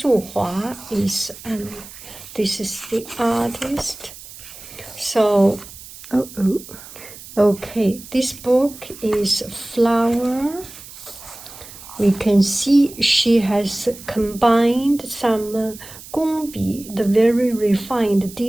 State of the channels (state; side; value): noise; right; hiss, 16 dB below the sound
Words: is, this is the artist. So, okay, this book is flower. We can see she has combined some gongbi, the very refined